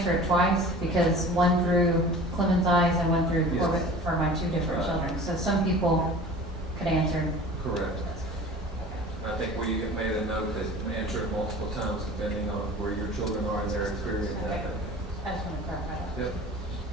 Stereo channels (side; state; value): both; normal; correlation 0.41